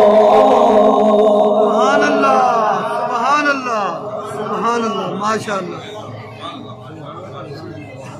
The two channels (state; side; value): identical; both; correlation 1.00